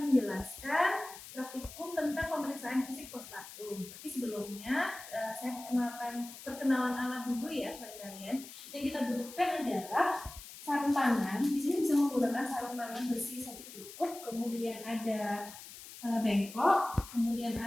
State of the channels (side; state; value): left; noise; hiss, 14 dB below the sound